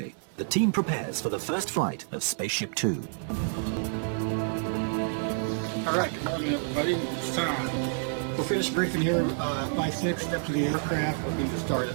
The team prepares for the first flight of Spaceship Two. All right, good morning, everybody. It's time. We'll finish briefing here by 6, step to the aircraft. We'll need to start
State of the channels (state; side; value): silent; left; 59 dB below the other